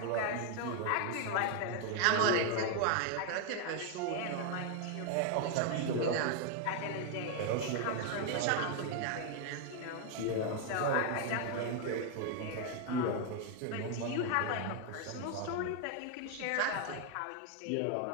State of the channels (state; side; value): different; both; correlation 0.01